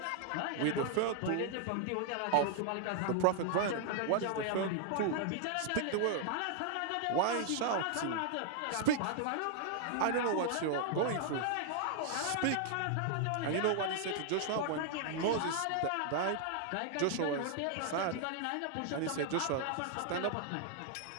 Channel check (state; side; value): different; both; correlation 0.00